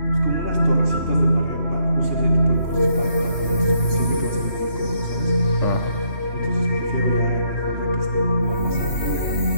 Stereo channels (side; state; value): right; late; 3.1 ms